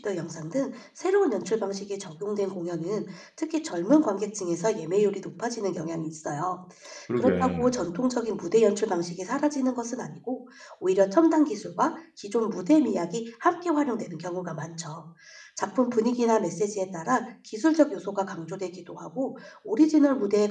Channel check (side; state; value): both; identical; correlation 1.00